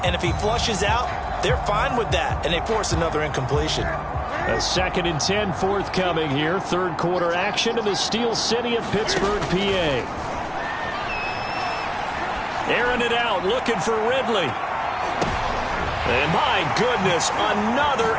and if he flushes out, they're fine with that, and they force another incompletion. A 2nd and 10 forthcoming here. 3rd quarter action in the Steel City of Pittsburgh, PA. Airing it out, looking for Ridley. And my goodness, another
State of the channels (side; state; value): both; identical; correlation 1.00